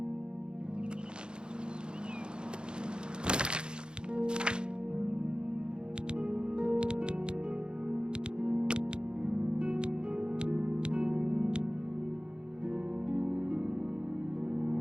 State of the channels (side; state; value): left; late; 0.050 ms